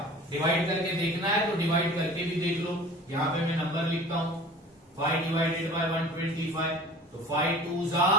डिवाइड करके देखना है तो डिवाइड करके भी देख लो। यहां पे मैं नंबर लिखता हूं 5 डिवाइडेड बाय 125। तो 5 2 जा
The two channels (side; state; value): both; normal; correlation 0.43